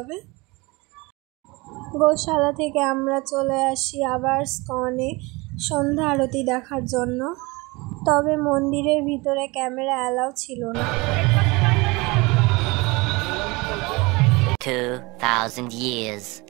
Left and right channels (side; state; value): left; quieter; 24.7 dB